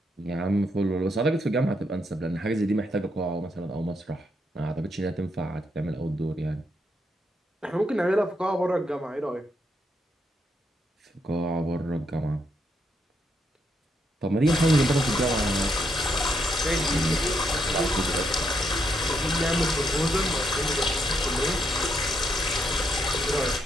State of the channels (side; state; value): both; normal; correlation 0.78